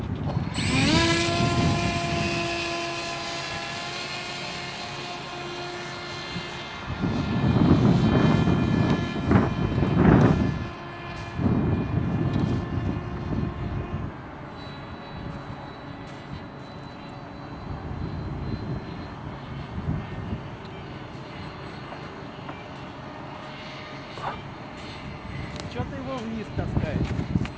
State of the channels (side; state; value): both; identical; correlation 1.00